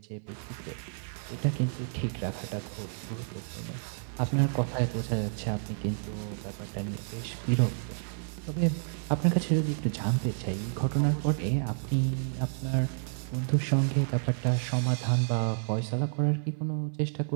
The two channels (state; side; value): silent; left; 58 dB below the other